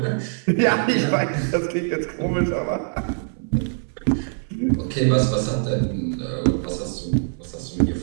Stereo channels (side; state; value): left; silent; 63 dB below the other